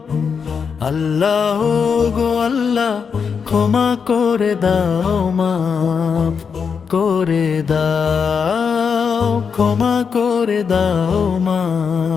আল্লাহ গো আল্লাহ, ক্ষমা করে দাও, মাফ করে দাও, ক্ষমা করে দাও,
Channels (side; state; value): right; quieter; 6.1 dB